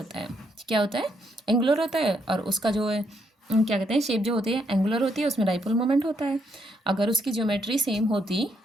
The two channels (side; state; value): both; normal; correlation 0.75